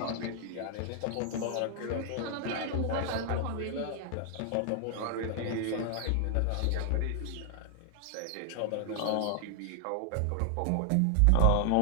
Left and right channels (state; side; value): different; both; correlation 0.00